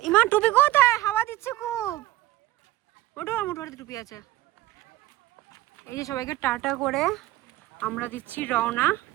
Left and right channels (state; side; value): quieter; left; 16.7 dB